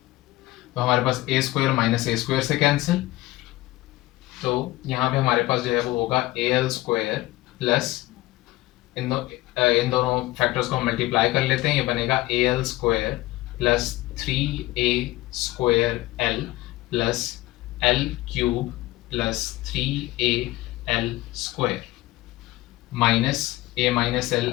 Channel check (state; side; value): quieter; right; 18.2 dB